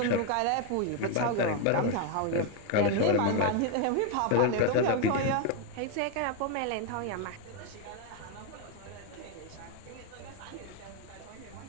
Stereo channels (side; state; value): both; different; correlation 0.01